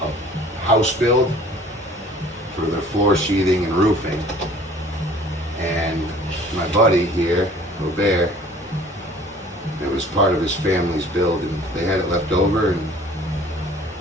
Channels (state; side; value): normal; both; correlation 0.51